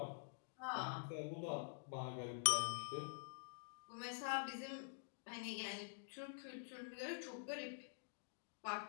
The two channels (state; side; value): silent; right; digital silence